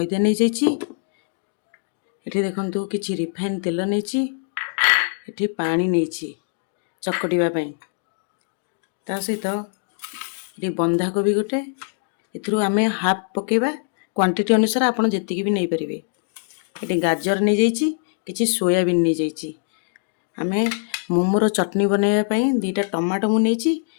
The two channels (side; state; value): right; silent; digital silence